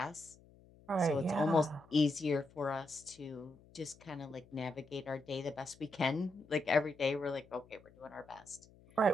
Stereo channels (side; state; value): left; noise; hum, 25 dB below the sound